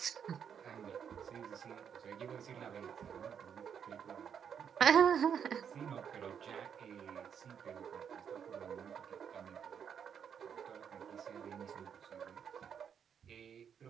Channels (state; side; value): quieter; left; 7.8 dB